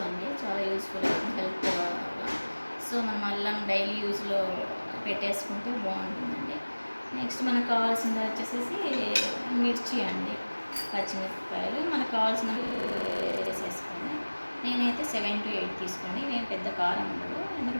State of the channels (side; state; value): both; inverted; correlation -1.00